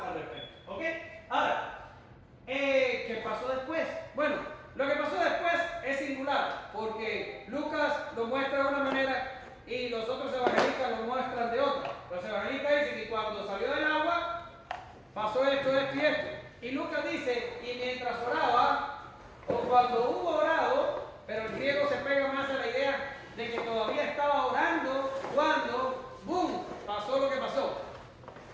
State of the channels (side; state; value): both; identical; correlation 1.00